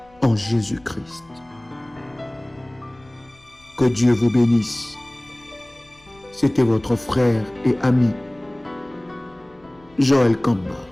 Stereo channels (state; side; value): noise; left; rumble, 29 dB below the sound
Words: en Jésus-Christ. Que Dieu vous bénisse. C'était votre frère et ami, Joël Kamba,